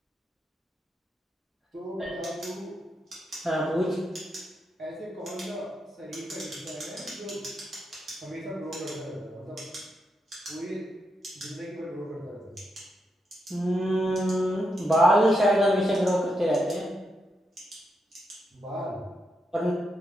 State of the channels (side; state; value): both; normal; correlation 0.83